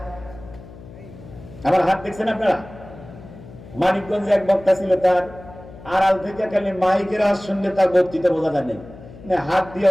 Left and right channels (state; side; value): noise; left; hum, 18 dB below the sound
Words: আমার হাত দেখছেন আপনারা? মানিকগঞ্জে এক বক্তা ছিল, তার আড়াল থেকে খালি মাইকের আওয়াজ শুনলে তার বক্তৃতা বোঝা যায় না, হাত দিয়ে